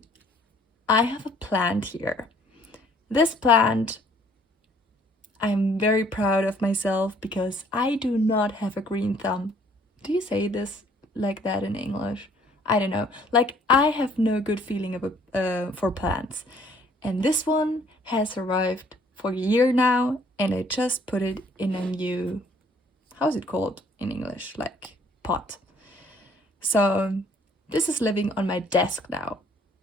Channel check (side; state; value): both; normal; correlation 0.60